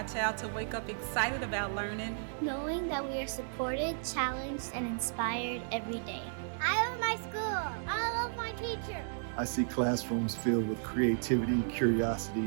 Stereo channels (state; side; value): silent; left; digital silence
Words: child to wake up excited about learning. Knowing that we are supported, challenged, and inspired every day. I love my school. I love my teacher. I see classrooms filled with creativity, curiosity,